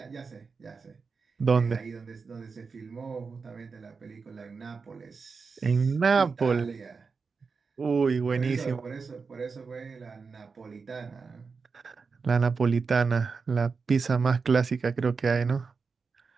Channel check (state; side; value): quieter; left; 4.9 dB